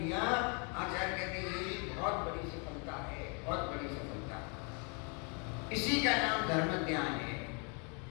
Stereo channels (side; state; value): right; quieter; 35.6 dB